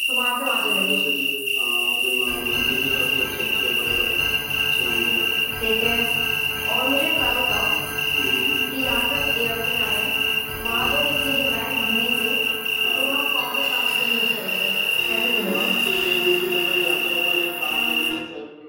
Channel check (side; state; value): both; identical; correlation 1.00